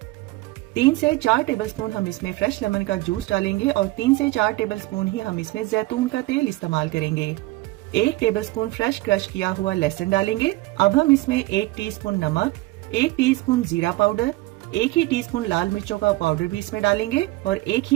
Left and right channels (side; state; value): left; quieter; 19.5 dB